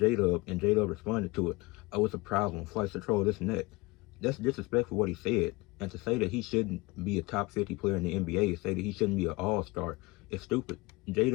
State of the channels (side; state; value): right; quieter; 23.4 dB